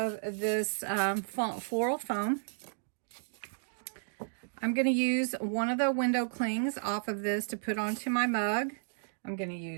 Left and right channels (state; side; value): silent; left; digital silence